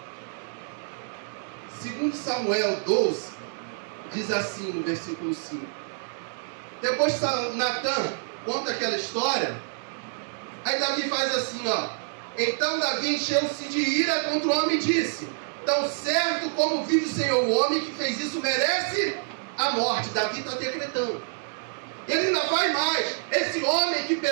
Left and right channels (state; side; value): silent; left; digital silence